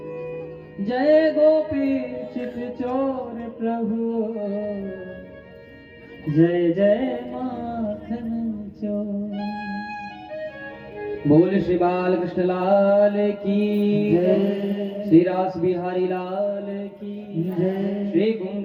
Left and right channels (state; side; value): identical; both; correlation 1.00